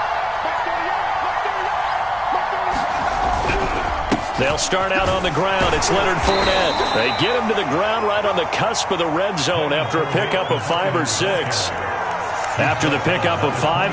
They'll start out on the ground. It's Leonard Fournette. They get him to the ground right on the cusp of the red zone after a pickup of 5 or 6. After the pickup of 5,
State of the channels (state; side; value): identical; both; correlation 1.00